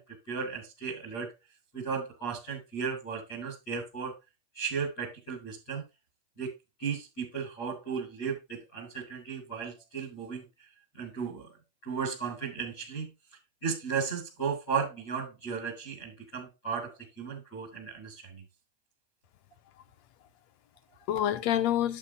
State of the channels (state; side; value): late; right; 8.5 ms